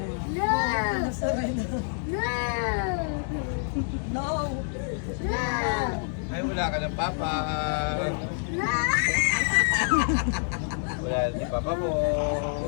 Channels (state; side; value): silent; right; 60 dB below the other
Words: Ay, wala ka ng Papa. Wala si Papa mo.